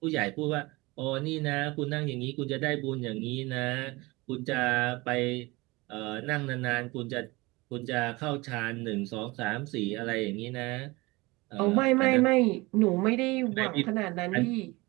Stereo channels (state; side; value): quieter; left; 23.0 dB